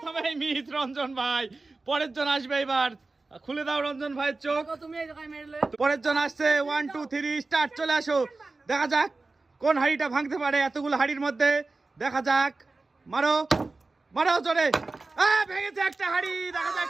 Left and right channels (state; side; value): quieter; left; 3.5 dB